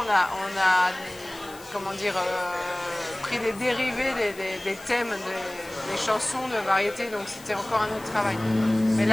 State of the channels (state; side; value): noise; left; hiss, 20 dB below the sound